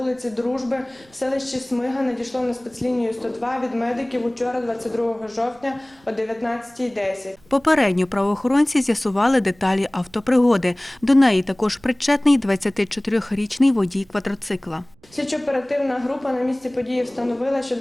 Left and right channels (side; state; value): right; noise; rumble, 30 dB below the sound